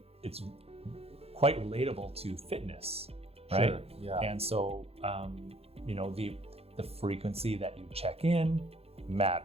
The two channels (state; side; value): late; left; 0.29 ms